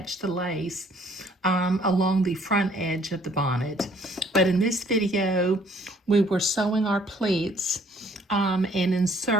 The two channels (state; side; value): normal; both; correlation 0.61